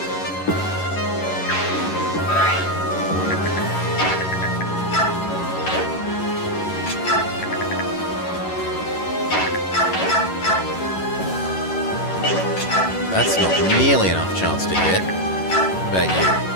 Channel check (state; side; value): late; right; 11 ms